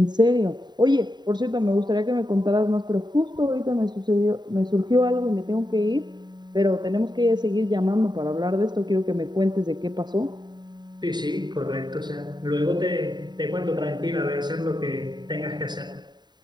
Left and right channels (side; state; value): left; late; 0.21 ms